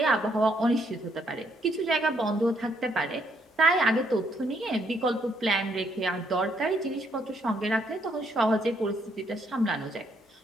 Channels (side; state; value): both; normal; correlation 0.71